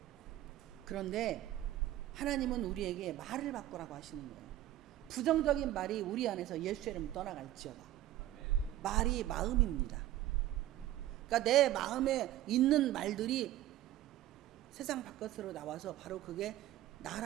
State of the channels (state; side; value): quieter; left; 13.9 dB